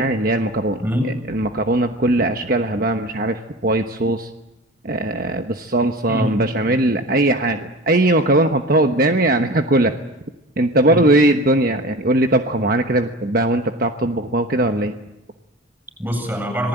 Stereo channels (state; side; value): normal; both; correlation 0.34